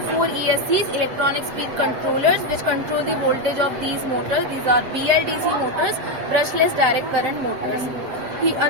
4 ESCs, electronic speed controllers, which control the voltage of these motors. These are BLDC motors, brushless direct current motors.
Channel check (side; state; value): left; late; 7.7 ms